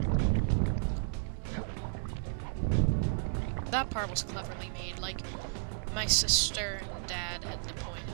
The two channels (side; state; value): left; silent; 56 dB below the other